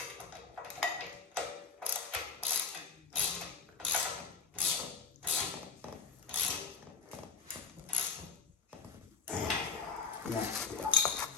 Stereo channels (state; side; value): quieter; right; 5.3 dB